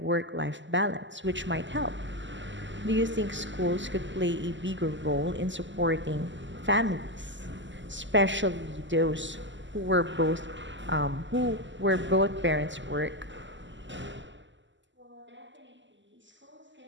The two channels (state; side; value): late; left; 0.54 ms